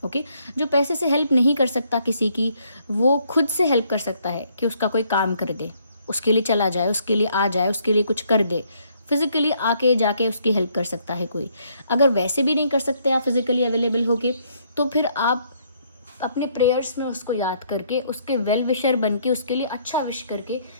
ओके, जो पैसे से हेल्प नहीं कर सकता किसी की, वो खुद से हेल्प कर सकता है कि उसका कोई काम कर दे, उसके लिए चला जाए, उसके लिए आ जाए, उसके लिए कुछ कर दे, फिजिकली आके जाके उसकी हेल्प कर सकता है कोई। अगर वैसे भी नहीं कर सकते आप फिजिकली अवेलेबल होके, तो फिर आप अपने प्रेयर्स में उसको याद करके, उसके वेल विशर बन के, उसके लिए अच्छा विश करके,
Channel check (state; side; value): inverted; both; correlation -0.68